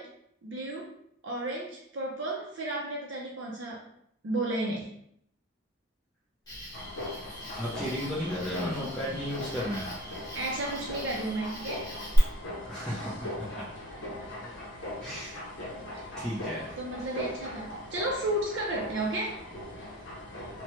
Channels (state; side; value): normal; both; correlation 0.43